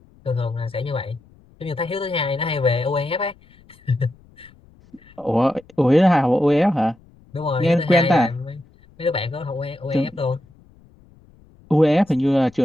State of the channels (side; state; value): left; noise; rumble, 28 dB below the sound